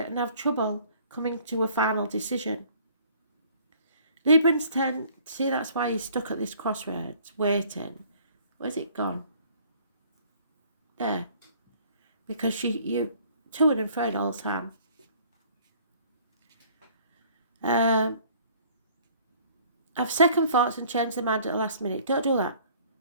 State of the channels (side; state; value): both; inverted; correlation -0.55